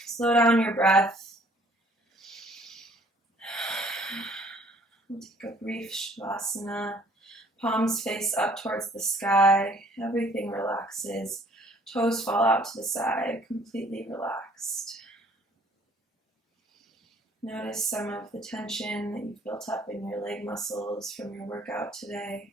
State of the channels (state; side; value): normal; both; correlation 0.58